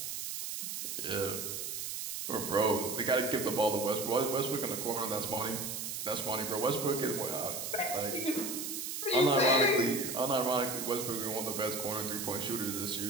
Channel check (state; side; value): noise; right; hiss, 4 dB below the sound